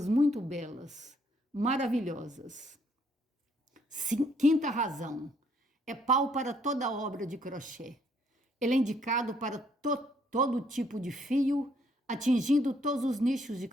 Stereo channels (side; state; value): both; normal; correlation 0.68